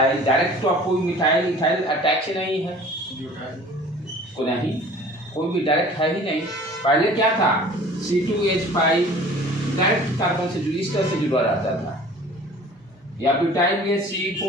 डायरेक्ट, तो आप कोई मिथाइल इथाइल अटैच नहीं है, कोई भी डायरेक्ट है ही नहीं। पहले क्या था, C2H5 डायरेक्ट कार्बन से इस तरह से जुड़ा रहता था, या ब्यूटाइल में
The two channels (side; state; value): both; normal; correlation 0.46